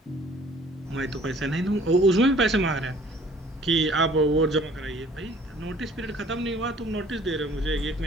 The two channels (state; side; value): normal; both; correlation 0.54